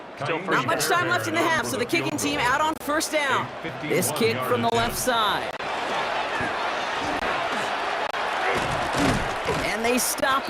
Not much time left in the half, so the kicking team out on 1st down. This kick from the left side. And they stop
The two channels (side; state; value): both; identical; correlation 1.00